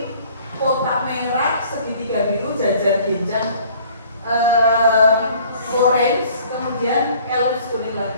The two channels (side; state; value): both; inverted; correlation -0.54